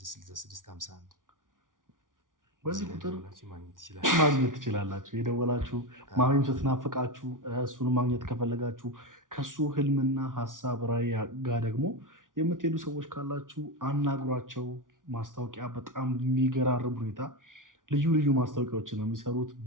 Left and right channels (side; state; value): left; late; 0.88 ms